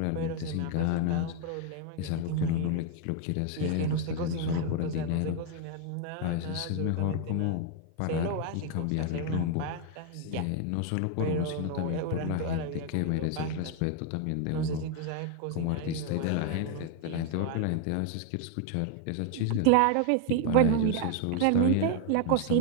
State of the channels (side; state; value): both; different; correlation 0.00